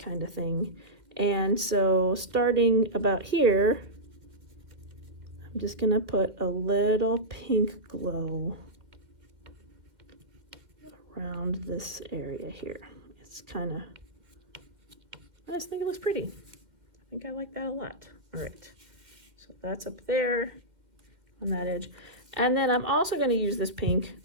kind of thing. And so starting about here, I'm just gonna put a little pink glow around this area here. It's kind of, I just think it looks pretty. I think I like that a lot. All right, so that's up there on that edge. And then I'm also gonna use this pink.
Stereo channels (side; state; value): left; late; 2.1 ms